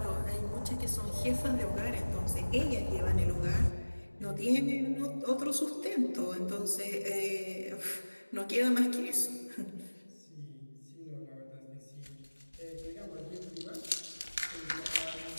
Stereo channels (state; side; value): inverted; both; correlation -1.00